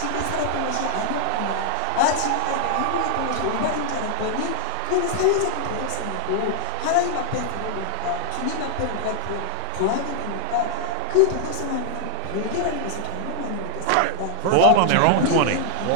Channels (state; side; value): different; both; correlation 0.00